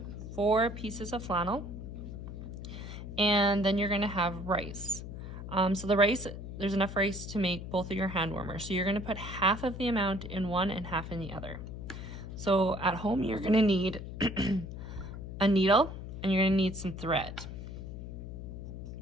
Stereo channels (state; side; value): noise; left; hum, 9 dB below the sound